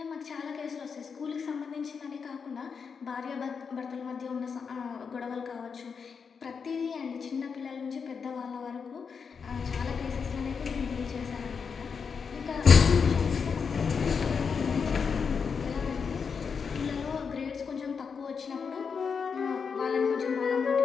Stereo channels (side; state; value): right; quieter; 5.9 dB